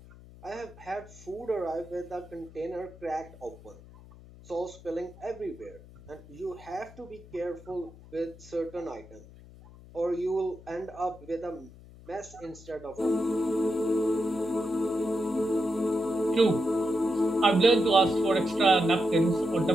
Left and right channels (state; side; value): noise; left; hum, 20 dB below the sound